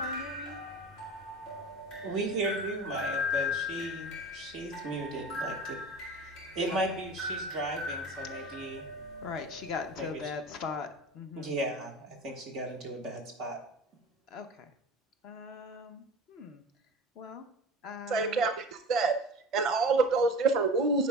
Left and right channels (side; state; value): both; normal; correlation 0.35